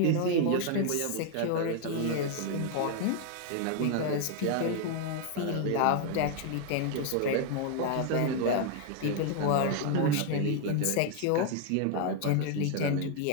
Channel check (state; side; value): different; both; correlation 0.00